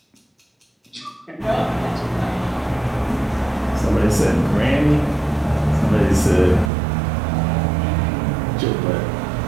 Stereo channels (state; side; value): drops out; left; at 6.7 s